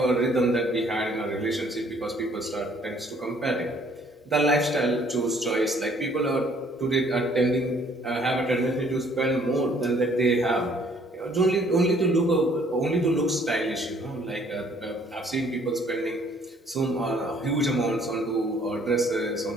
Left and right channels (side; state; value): both; normal; correlation 0.61